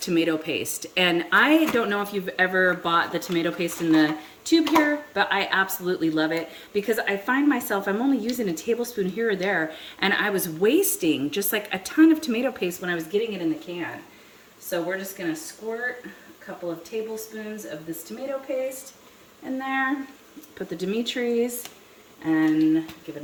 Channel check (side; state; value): both; identical; correlation 1.00